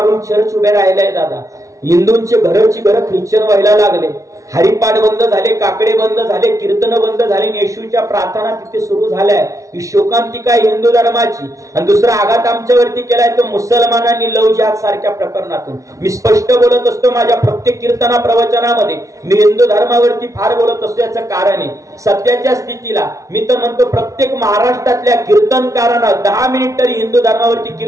चर्च उभे राहिलाय दादा. हिंदूंचे घरची घरं ख्रिश्चन व्हायला लागले. हरिपाठ बंद झाले, काकडे बंद झाले, कीर्तन बंद झाले, येशूच्या प्रार्थना तिथे सुरू झाल्या. ही शोकांतिका हिंदू धर्माची. आणि दुसरा आघात आमच्यावरती केलाय तो मुसलमानांनी लव जिहाद सारख्या प्रकरणातून. मी स्पष्ट बोलत असतो माझ्या प्रत्येक कीर्तना प्रवचनामध्ये. मी हिंदू धर्मावरती फार बोलत असतो. याचं कारण आहे सध्याच्या स्थितीला मी तर म्हणतो प्रत्येक महाराष्ट्रातल्या कीर्तनकारांना 10 मिनिट तरी हिंदू धर्मावरती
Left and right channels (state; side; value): late; left; 0.16 ms